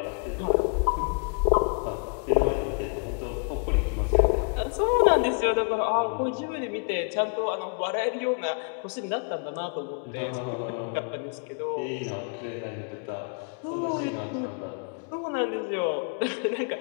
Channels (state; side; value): quieter; right; 37.3 dB